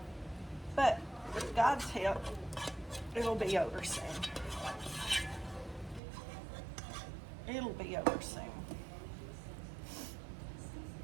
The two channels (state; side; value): drops out; left; at 6.0 s